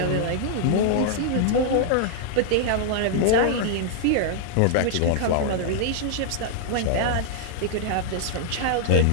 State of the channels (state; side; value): different; both; correlation 0.00